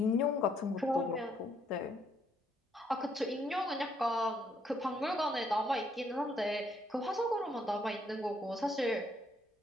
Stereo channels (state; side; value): normal; both; correlation 0.71